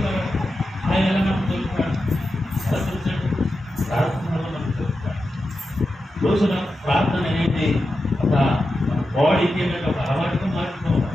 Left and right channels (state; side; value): normal; both; correlation 0.90